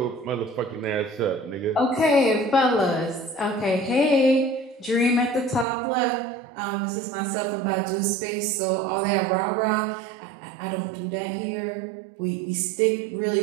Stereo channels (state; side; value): drops out; left; at 5.7 s